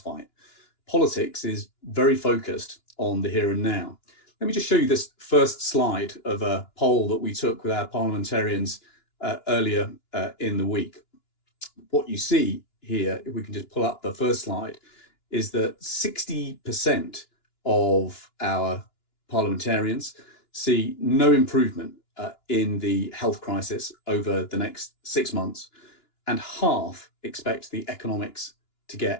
Politics is very focused on the here and now. Let me just show you this first slide of a poll that we took with our parliamentarians earlier in the week. What you see here, if we can just pull up the first slide, is that 60% of our parliamentarians see no improvement in the health crisis over the next 6 months, and half expect the economics to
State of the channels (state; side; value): late; right; 2.9 ms